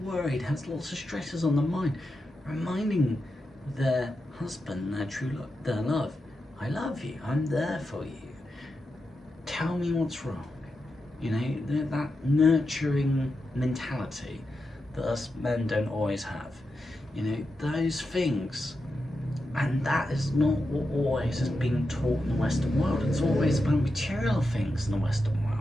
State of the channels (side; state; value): both; normal; correlation 0.88